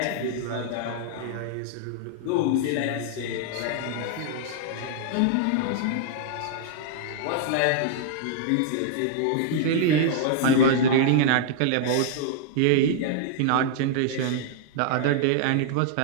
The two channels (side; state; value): both; different; correlation -0.01